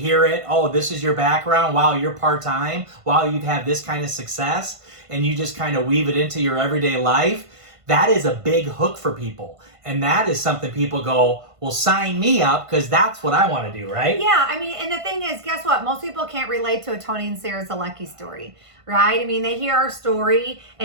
it, oh, this is your background, wow, you're part-time, wow, you've had this kind of success, and you just kind of weave it into your everyday life. That is a big hook for people. And that is something people go, well, sign me up because that's what I want to do, right? Yeah, I mean, and the thing is, guess what? Most people can't relate to a Tony and Sarah Zolecki story, right? I mean, they hear our story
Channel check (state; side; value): late; left; 1.5 ms